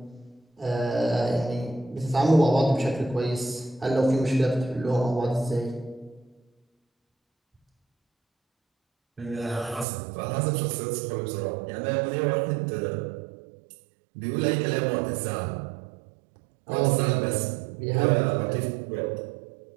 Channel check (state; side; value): drops out; left; at 9.9 s